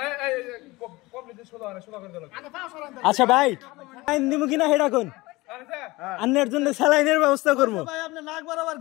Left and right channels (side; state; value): right; quieter; 21.3 dB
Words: এই কমপ্লিট সোজা করে দিল আচ্ছা ভাই স্যালাইন নিমু কিনা হেডা কোন আন্নের জন্য স্যালাইনের ব্যবস্থা করব ভাই আপনি নাক বরাবর